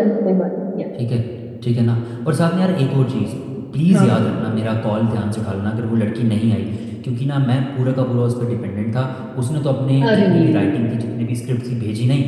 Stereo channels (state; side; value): identical; both; correlation 1.00